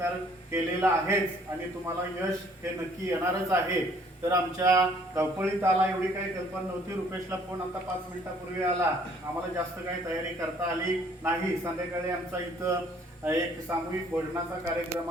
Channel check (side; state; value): both; normal; correlation 0.60